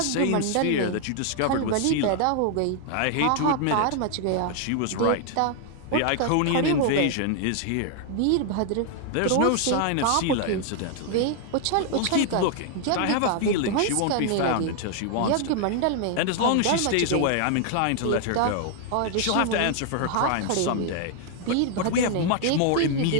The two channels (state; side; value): different; both; correlation 0.00